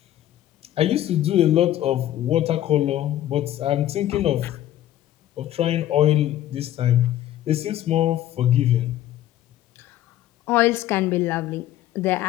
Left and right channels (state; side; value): quieter; right; 12.9 dB